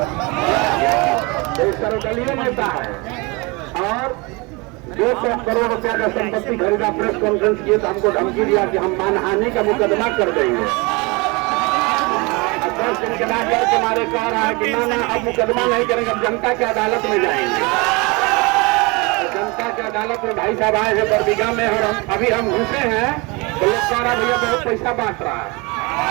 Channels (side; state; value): left; quieter; 27.0 dB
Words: एक सर्वदलीय नेता है और 200 करोड़ रुपया का संपत्ति खरीदा। प्रेस कॉन्फ्रेंस किए तो हमको धमकी दिया कि हम मानहानि का मुकदमा कर देंगे। 10 दिन के बाद तुम्हारे कह रहा है कि ना अब मुकदमा नहीं करेंगे, अब जनता की अदालत में जाएंगे। जनता की अदालत में भाई साहब आए हैं बरबीघा में और हम घुसे हैं तो लोग कह रहा भैया बहुत पैसा बांट रहा है।